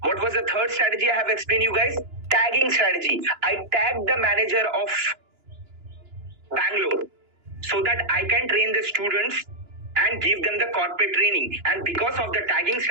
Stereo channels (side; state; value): left; late; 2.9 ms